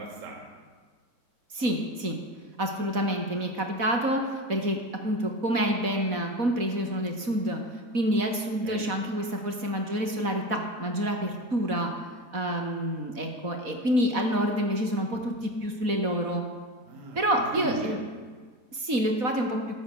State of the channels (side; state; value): left; late; 4.1 ms